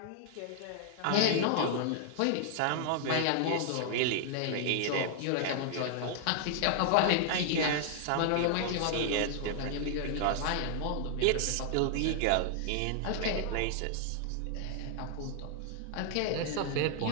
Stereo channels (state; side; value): different; both; correlation 0.00